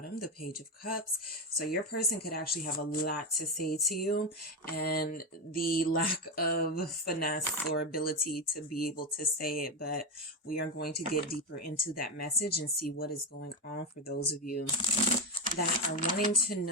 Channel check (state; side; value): normal; both; correlation 0.13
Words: the Page of Cups. So your person could actually have a lot to say to you, and the lack of finesse or ability to be able to say it. But we are going to get deeper into that message and see what is going on for those of you that are wanting to